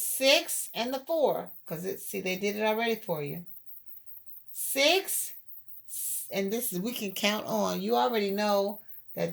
and the 4, because they did it already for you. 6, and this is, we can count on. You already know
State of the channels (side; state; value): both; identical; correlation 1.00